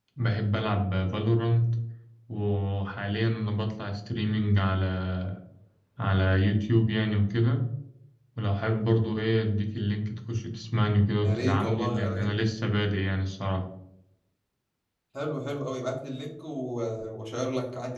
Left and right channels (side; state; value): both; identical; correlation 1.00